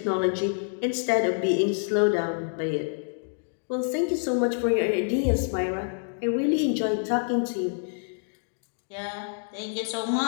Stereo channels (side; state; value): right; silent; 60 dB below the other